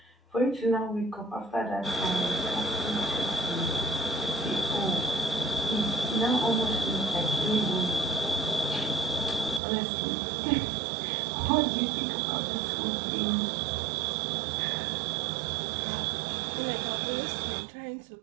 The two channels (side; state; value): left; drops out; at 9.6 s